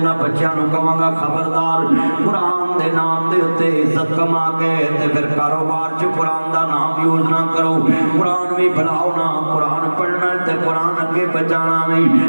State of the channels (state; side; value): inverted; both; correlation -1.00